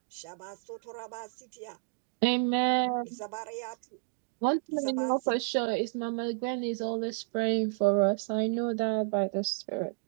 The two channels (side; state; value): left; silent; digital silence